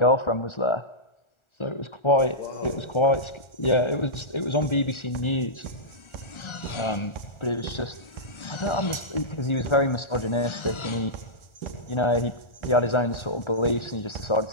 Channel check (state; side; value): late; right; 1.4 ms